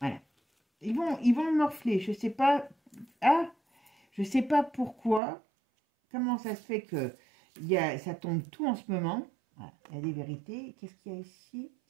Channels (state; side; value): drops out; left; at 5.2 s